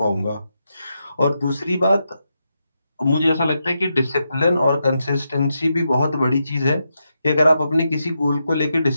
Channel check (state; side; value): inverted; both; correlation -0.85